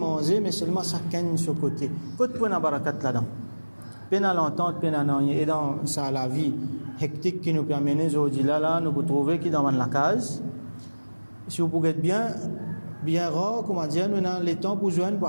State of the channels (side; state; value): both; inverted; correlation -1.00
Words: mais seulement chacun de ce côté. Côté pour la barakat là-dedans. Peine à l'entente, peine à n'en et dans ça, la vie hectique qui nous permet aujourd'hui là, nous pouvons trouver qui dans la case. Si vous pouvez être bien rare, comment dire, nous avons le temps pour joindre, pour